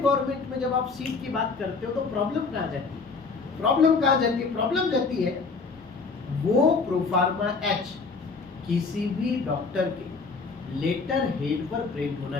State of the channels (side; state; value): right; quieter; 4.5 dB